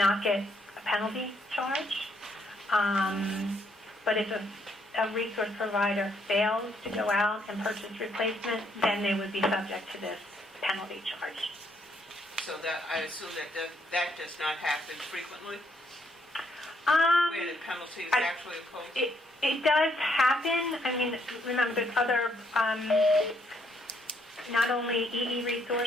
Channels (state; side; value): normal; both; correlation 0.71